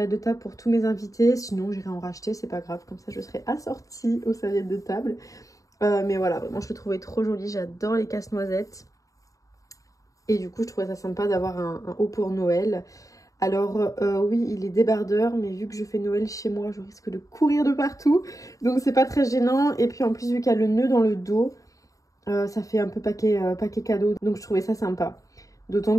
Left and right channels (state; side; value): late; right; 0.16 ms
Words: de table pour tous mes invités. Sinon, j'irai en racheter, c'est pas grave. Comme ça, je serai assortie aux serviettes de table. Mais voilà, vraiment, je le trouvais trop joli. J'adore les casse-noisettes. Et du coup, je trouvais ça sympa d'avoir un haut pour Noël. Alors, oui, il est débardeur. Mais vu que je fais Noël chez moi, je risque de courir de partout. Donc, c'est pas très gênant. Et puis, en plus, vu qu'il y a le nœud dans le dos, ça fait un peu paquet cadeau. Donc, je trouvais ça sympa. D'autant